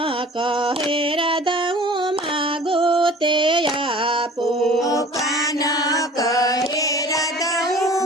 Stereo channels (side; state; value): both; normal; correlation 0.45